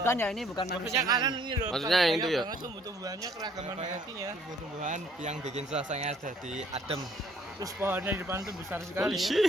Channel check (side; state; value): both; normal; correlation 0.61